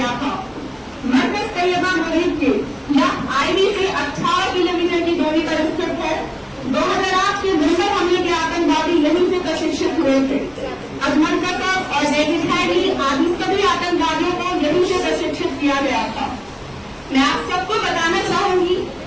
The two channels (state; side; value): identical; both; correlation 1.00